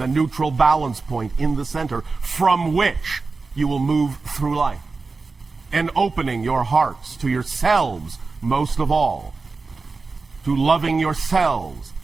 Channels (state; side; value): quieter; left; 4.1 dB